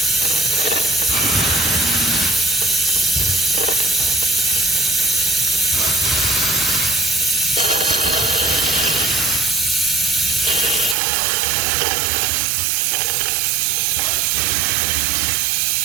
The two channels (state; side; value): drops out; left; at 11.0 s